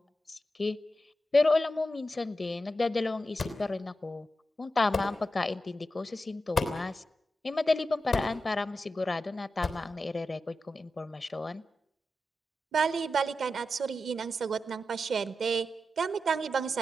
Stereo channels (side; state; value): both; normal; correlation 0.90